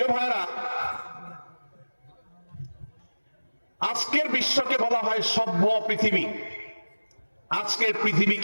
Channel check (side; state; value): both; inverted; correlation -1.00